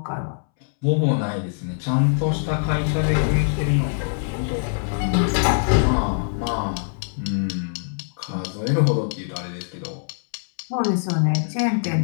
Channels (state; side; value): silent; right; 63 dB below the other